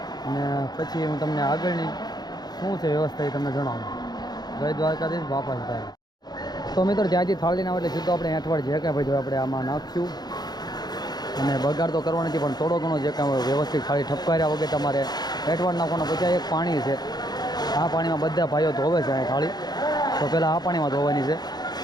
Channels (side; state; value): right; late; 0.20 ms